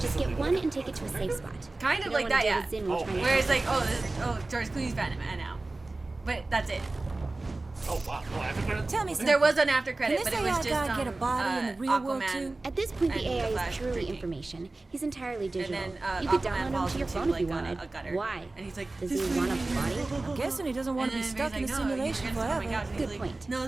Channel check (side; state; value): left; quieter; 3.1 dB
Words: Just this is get one and take it to a safe spot. Kind You of don't like wanna that, deal yeah. with Zen while Oh, trying to Where it's help. like, George Clooney's Batman now. But that's it. Oh, wow. No, after credits? Tell me Okay. There was an after credit, Can but this it was AI just guy get a body in the real world Aquaman. too? At this point, the and AI the Flash is purely drinking. information. He's entirely And digital. then You could Aquaman download him falls to your into phone if like you wanted. a gutter. Why? And he's like, Does this he is want a good. body? I'm guessing he doesn't want to be And then stuck in a Barry's like, no, simulation you're gonna- oh my forever. gosh. And he's Good like, point. No,